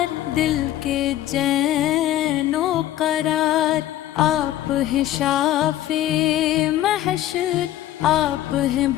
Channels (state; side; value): quieter; right; 13.4 dB